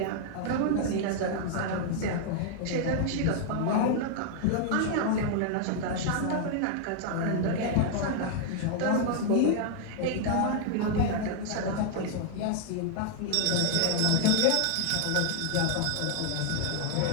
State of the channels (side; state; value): both; different; correlation 0.00